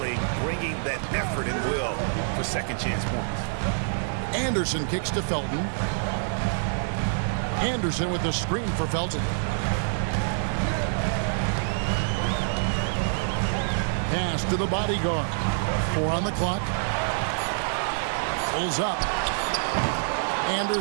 bringing that effort and will for second chance points. Anderson kicks to Felton. Anderson with the screen for Felton. Pass to the bodyguard. 4 on the clock. Pulls up.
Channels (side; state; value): left; silent; digital silence